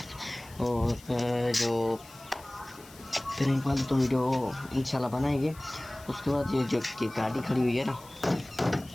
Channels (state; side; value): noise; left; hiss, 22 dB below the sound